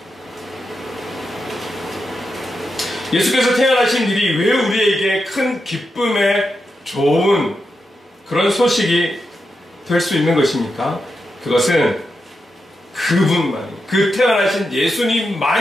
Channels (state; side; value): normal; both; correlation 0.87